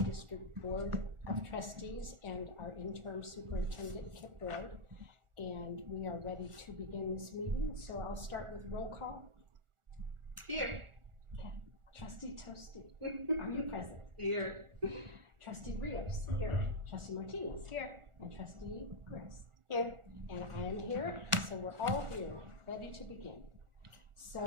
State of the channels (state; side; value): late; left; 1.4 ms